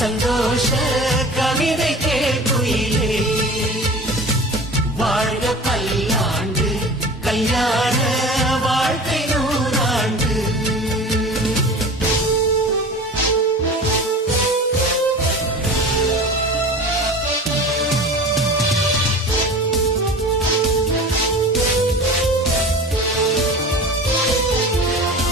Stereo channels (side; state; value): both; normal; correlation 0.37